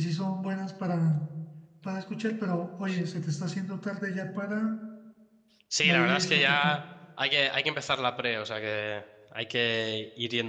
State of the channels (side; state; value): both; identical; correlation 1.00